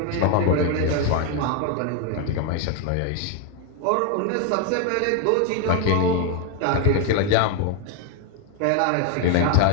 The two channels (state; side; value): different; both; correlation 0.01